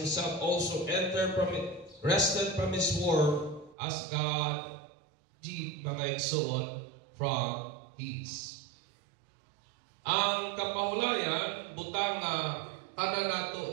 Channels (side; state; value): left; drops out; at 3.8 s